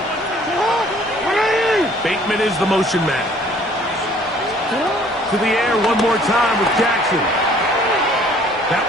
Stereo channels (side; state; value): both; normal; correlation 0.57